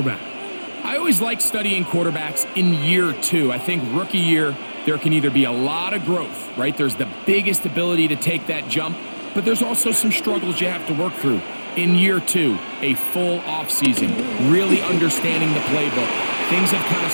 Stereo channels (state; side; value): inverted; both; correlation -1.00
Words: I always like studying quarterbacks in year 2. I think rookie year, there can either be a lot of growth, right? There's the biggest ability to take that jump, but there's also some struggles you have to work through. In year 2, a full offseason, really understanding the playbook. Things have kind of